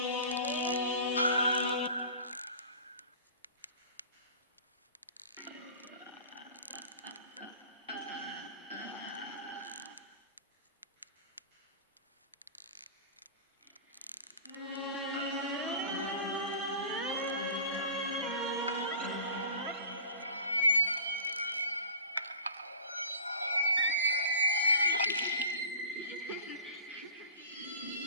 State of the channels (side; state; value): both; inverted; correlation -0.42